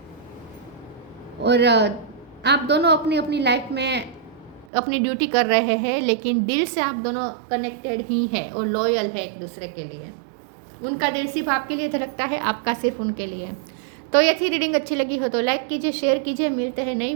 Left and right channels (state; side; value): drops out; left; at 4.7 s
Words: और आप दोनों अपनी अपनी लाइफ में अपनी ड्यूटी कर रहे हैं लेकिन दिल से आप दोनों कनेक्टेड ही हैं और लॉयल है एक दूसरे के लिए। उनका दिल सिर्फ आपके लिए धड़कता है, आपका सिर्फ उनके लिए। तो ये थी रीडिंग, अच्छी लगी हो तो लाइक कीजिए, शेयर कीजिए। मिलते हैं नई